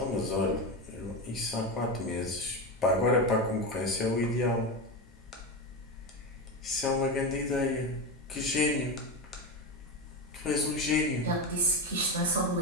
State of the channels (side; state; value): both; normal; correlation 0.17